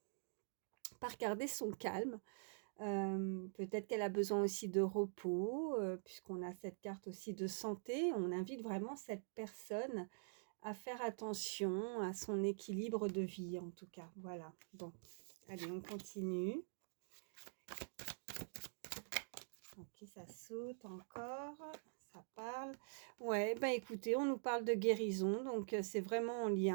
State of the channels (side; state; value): left; silent; digital silence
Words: garder son calme. Peut-être qu'elle a besoin aussi de repos, puisqu'on a cette carte aussi de santé. On invite vraiment cette personne à faire attention à son équilibre de vie, en tout cas. Voilà. Bon, allez, on continue. Ok, ça saute encore. Ça parle. Ouais, bah écoutez, on nous parle de guérison, donc c'est vraiment en